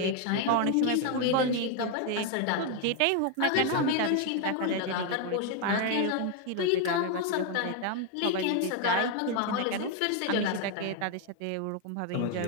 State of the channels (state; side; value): different; both; correlation 0.01